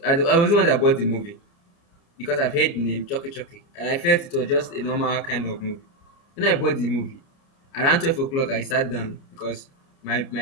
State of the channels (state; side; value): late; right; 29 ms